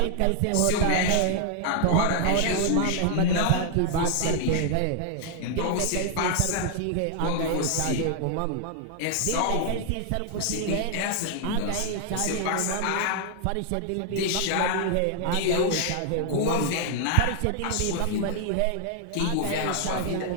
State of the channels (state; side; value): different; both; correlation 0.00